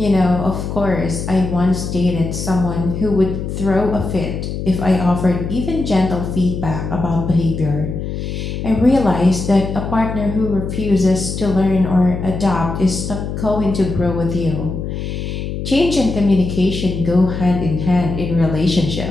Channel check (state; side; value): noise; left; hum, 5 dB below the sound